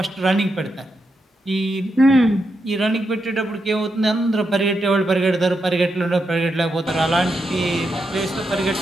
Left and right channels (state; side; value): normal; both; correlation 0.84